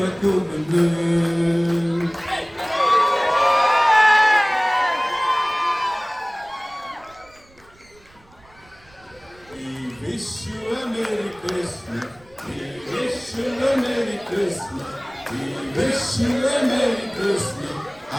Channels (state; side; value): noise; right; rumble, 28 dB below the sound